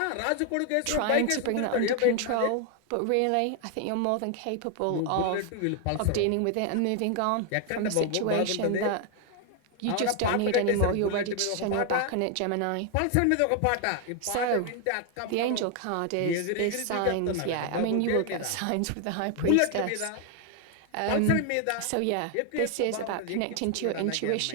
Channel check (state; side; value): different; both; correlation 0.00